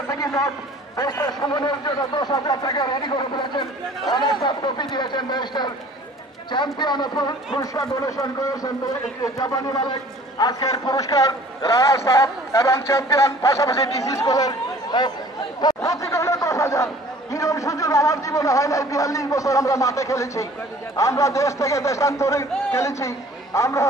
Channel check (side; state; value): both; normal; correlation 0.51